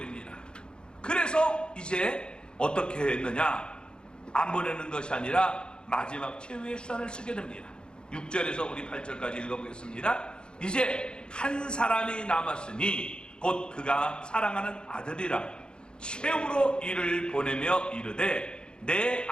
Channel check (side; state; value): right; late; 0.050 ms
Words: 그래서 이제 어떻게 했느냐? 안 보내는 것이 아니라 마지막 최후의 수단을 쓰게 됩니다. 6절에서 우리 8절까지 읽어보겠습니다. 이제 한 사람이 남았으니 곧 그가 사랑하는 아들이라 최후로 이를 보내며 이르되 내